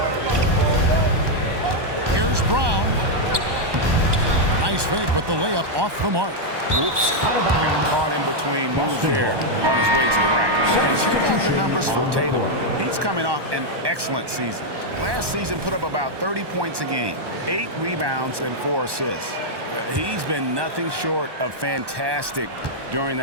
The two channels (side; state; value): left; late; 1.1 ms